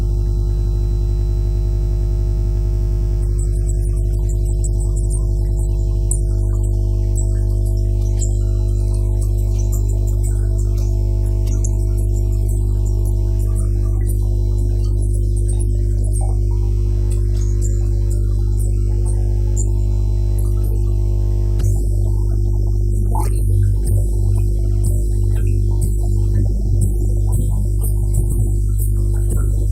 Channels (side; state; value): both; identical; correlation 1.00